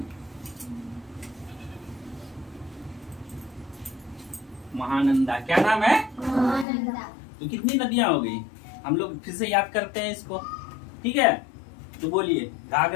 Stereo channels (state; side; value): drops out; right; at 6.7 s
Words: महानंदा। क्या नाम है? महानंदा। तो कितनी नदियां हो गई? हम लोग फिर से याद करते हैं इसको, ठीक है। तो बोलिए।